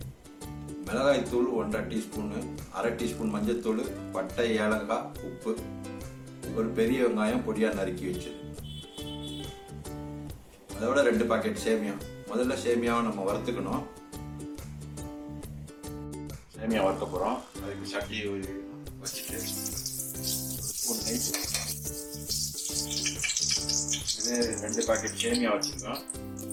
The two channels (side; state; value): both; identical; correlation 1.00